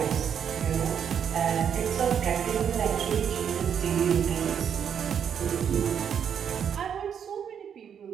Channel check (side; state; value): left; quieter; 8.1 dB